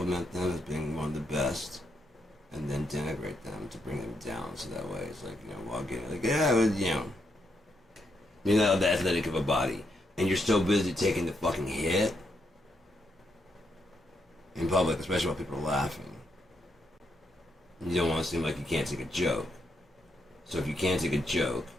them as being one of the best, and then denigrate them to bring them down. So that way, it's like, you know, walk in like, yeah, well, you know, you're not the athletic of a body, and you're so busy taking the fucking hit in public, especially while people are laughing. You don't want to seem like you can't take a joke. So if you can't take a joke,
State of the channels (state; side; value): normal; both; correlation 0.79